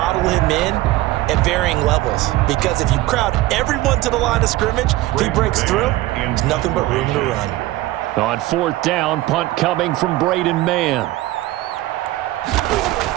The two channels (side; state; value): left; quieter; 17.3 dB